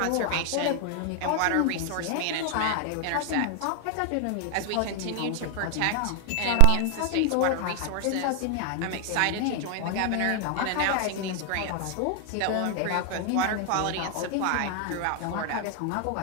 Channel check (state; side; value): different; both; correlation 0.00